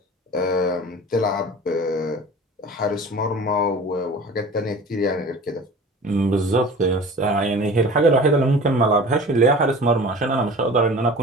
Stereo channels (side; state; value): both; normal; correlation 0.40